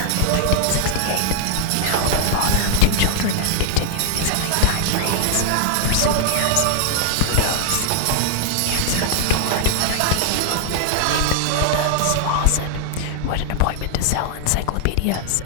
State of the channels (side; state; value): both; different; correlation 0.00